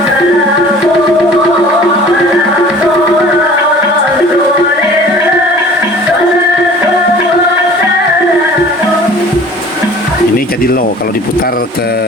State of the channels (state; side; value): normal; both; correlation 0.46